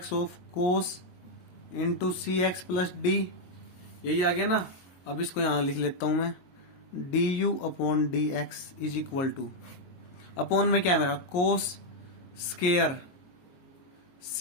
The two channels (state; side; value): late; right; 22 ms